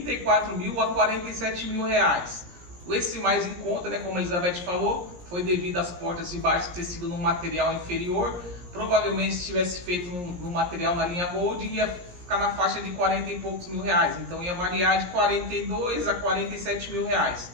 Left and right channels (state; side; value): late; left; 17 ms